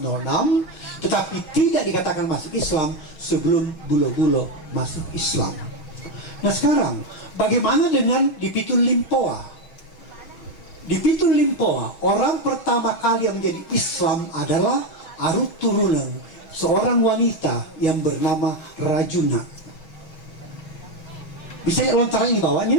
tetapi tidak dikatakan masuk Islam sebelum Bulo-Bulo masuk Islam. Nah sekarang, bagaimana dengan di Pitul Limpoa? Di Pitul Limpoa, orang pertama kali yang menjadi Islam adalah Arut Turunan, seorang wanita yang bernama Rajuna. Bisa lontaran di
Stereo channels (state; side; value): late; right; 6.3 ms